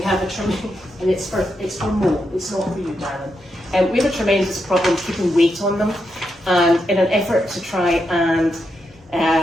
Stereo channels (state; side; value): normal; both; correlation 0.84